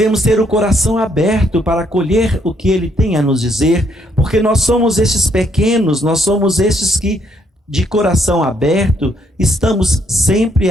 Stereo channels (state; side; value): normal; both; correlation 0.71